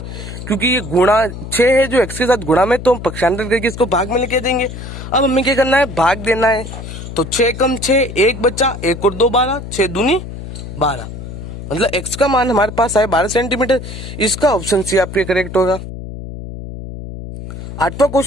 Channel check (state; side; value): noise; left; hum, 10 dB below the sound